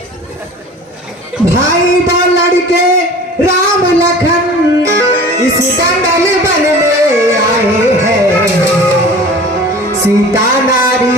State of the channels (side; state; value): both; normal; correlation 0.41